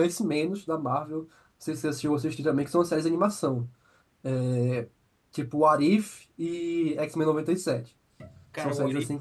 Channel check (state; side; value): identical; both; correlation 1.00